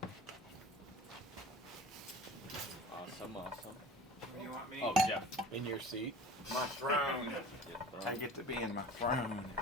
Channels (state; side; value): normal; both; correlation 0.40